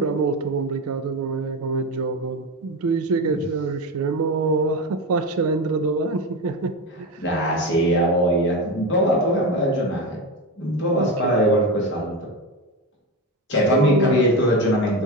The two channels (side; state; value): both; normal; correlation 0.19